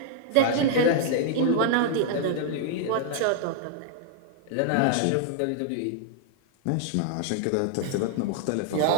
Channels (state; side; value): different; both; correlation -0.01